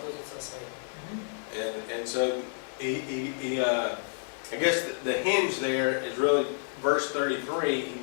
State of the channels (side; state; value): right; silent; digital silence